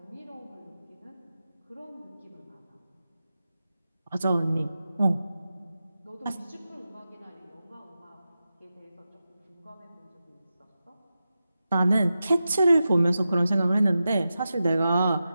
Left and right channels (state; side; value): inverted; both; correlation -0.92